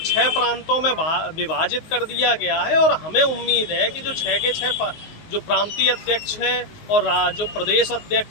6 प्रांतों में विभाजित कर दिया गया है और हमें उम्मीद है कि जो 6 के 6 जो प्रांतीय अध्यक्ष हैं और जो प्रदेश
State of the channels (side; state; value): right; late; 19 ms